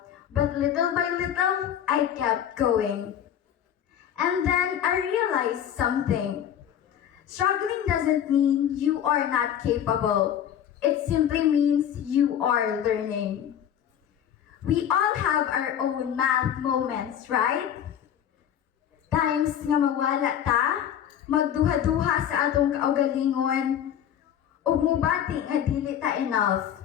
But little by little, I kept going. And then I realized something. Struggling doesn't mean you are not capable. It simply means you are learning. We all have our own math moments, right? Times nga mawala ta, magduha-duha sa atong kaugalingon, ug mubati nga dili ta enough.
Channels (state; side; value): quieter; right; 9.7 dB